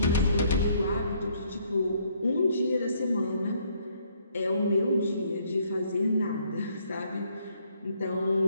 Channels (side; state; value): both; inverted; correlation -0.67